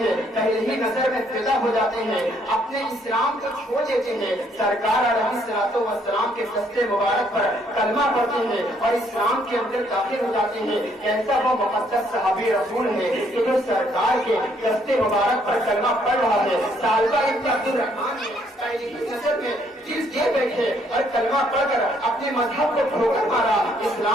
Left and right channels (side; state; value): both; normal; correlation 0.68